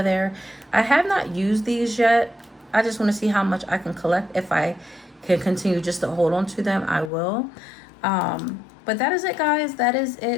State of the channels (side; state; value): right; drops out; at 7.1 s